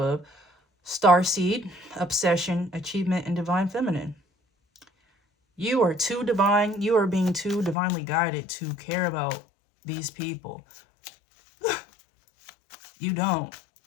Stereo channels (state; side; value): drops out; right; at 7.8 s